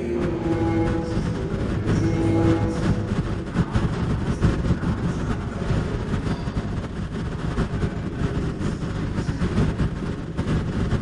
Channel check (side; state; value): both; identical; correlation 1.00